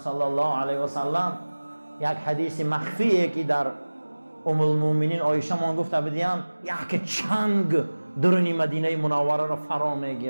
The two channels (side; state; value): both; inverted; correlation -1.00